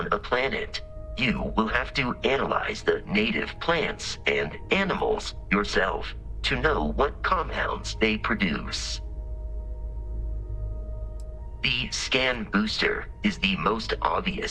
a planet, you will have to analyze the native plants and animals yourself to know what compounds they produce. The scan booster is the most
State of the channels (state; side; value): identical; both; correlation 1.00